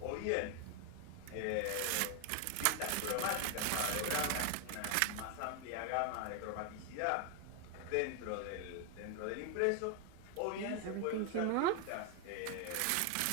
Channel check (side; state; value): both; different; correlation 0.01